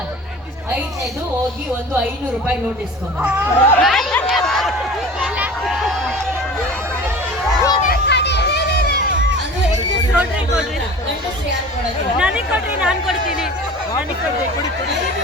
ಐದನೇದು ಹೋಗಿ ಒಂದು 500 ರೂಪಾಯಿ ನೋಟ್ ಇಸ್ಕೊಂಡು ನನಗೆ ಕೊಡ್ರಿ ನಾನು ಕೊಡ್ತೀನಿ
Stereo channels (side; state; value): both; normal; correlation 0.39